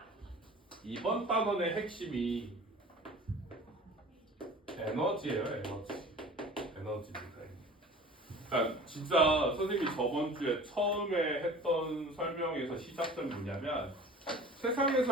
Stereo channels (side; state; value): both; normal; correlation 0.42